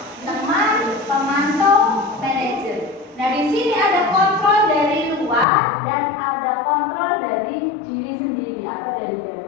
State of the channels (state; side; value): drops out; right; at 5.5 s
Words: teman, pemantau, manajer. Nah, di sini ada kontrol dari luar dan ada kontrol dari diri sendiri atau dari